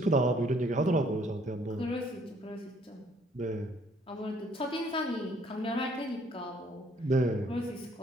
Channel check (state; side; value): normal; both; correlation 0.63